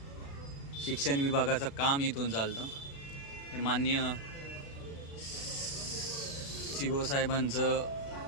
शिक्षण विभागाचं काम इथून चालतं। हे माननीय CO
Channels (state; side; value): late; right; 36 ms